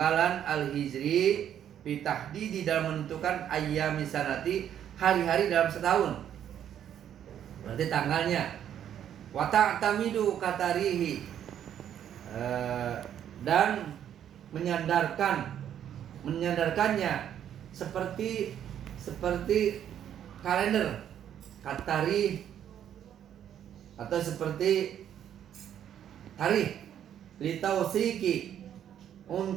al-hijri fi tahdidi dalam menentukan ayyami sanati hari-hari dalam setahun. Berarti tanggalnya. Wa ta'tamidu katarihi dan menyandarkannya seperti kalender katari atau seperti tarikh litausiki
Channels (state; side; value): quieter; left; 9.9 dB